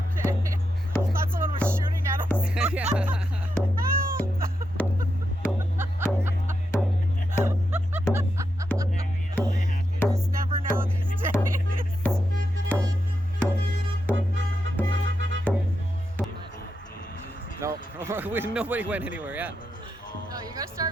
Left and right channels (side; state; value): both; normal; correlation 0.85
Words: I thought someone was shooting at us. Yeah. You just never know these days. No, nobody went anywhere. Yeah. No, you gotta